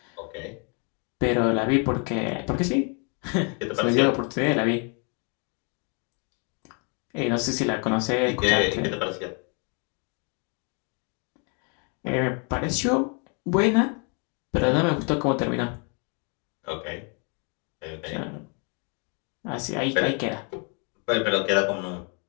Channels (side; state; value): right; quieter; 36.8 dB